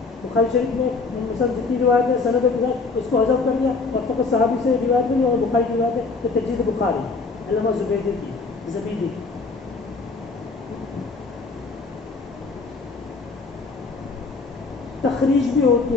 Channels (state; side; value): quieter; right; 4.1 dB